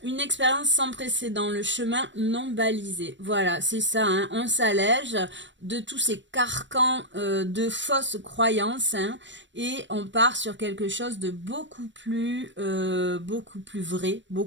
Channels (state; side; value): late; left; 0.53 ms